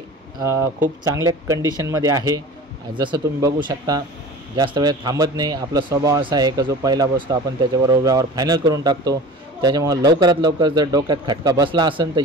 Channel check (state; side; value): normal; both; correlation 0.38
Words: खूप चांगल्या कंडिशनमध्ये आहे। जसं तुम्ही बघू शकता, जास्त वेळ थांबत नाही। आपला स्वभाव असा आहे की जो पहिला बसतो आपण त्याच्याबरोबर व्यवहार फायनल करून टाकतो। त्याच्यामुळे लवकरात लवकर जर डोक्यात खटका बसला असेल तर